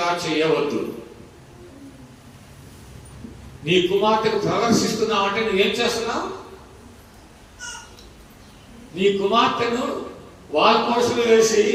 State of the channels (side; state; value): both; identical; correlation 1.00